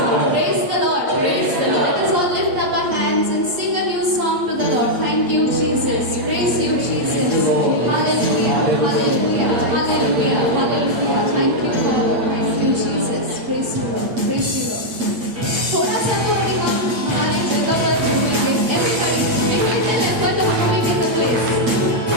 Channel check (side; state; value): left; late; 8.4 ms